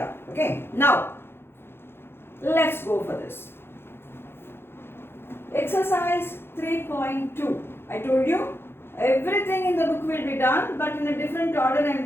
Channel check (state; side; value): late; right; 0.11 ms